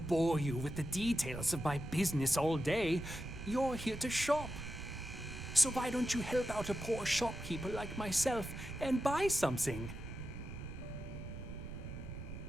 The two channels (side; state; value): right; noise; rumble, 10 dB below the sound